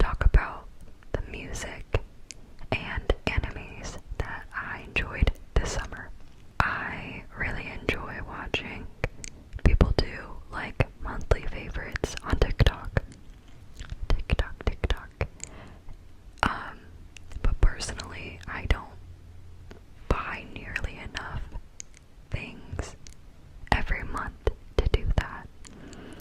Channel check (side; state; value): both; identical; correlation 1.00